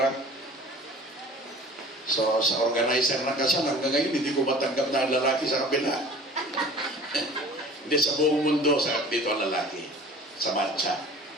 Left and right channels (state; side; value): normal; both; correlation 0.44